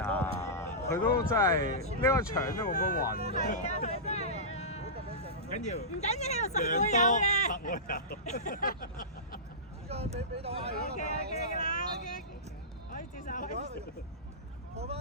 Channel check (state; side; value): normal; both; correlation -0.17